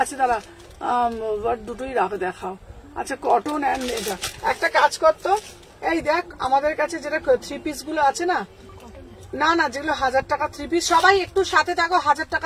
আচ্ছা দাঁড়া, দুটোই রাখো দেখাও। আচ্ছা কটন অ্যান্ড এটা একটা কাজ করতো, এই দেখ আমাদের কাছে যেটা থ্রি পিস গুলো আছে না, না না যেগুলো 1000 টাকা থ্রি পিস, সবাই একটু সাথে থাকো। 1000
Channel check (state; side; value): identical; both; correlation 1.00